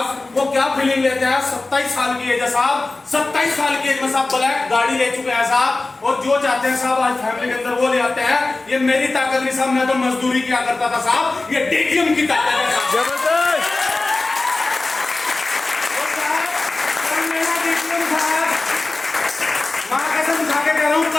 वो क्या फीलिंग लेते हैं। 27 साल की एज है साहब, 27 साल की एज में साहब ब्लैक गाड़ी ले चुके हैं साहब। और जो चाहते हैं साहब आज फैमिली के अंदर वो ले आते हैं। ये मेरी ताकत नहीं साहब, मैं तो मजदूरी किया करता था साहब, ये डीटीएम की ताकत है साहब। जबरदस्त।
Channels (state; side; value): quieter; right; 3.2 dB